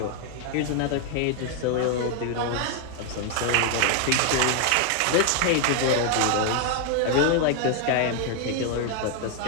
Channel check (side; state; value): both; different; correlation 0.00